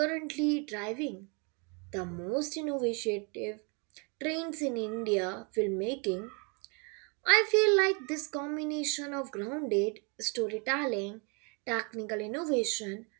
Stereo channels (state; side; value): quieter; left; 33.9 dB